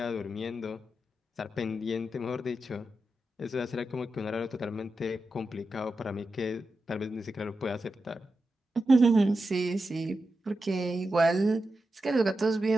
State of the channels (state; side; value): normal; both; correlation 0.89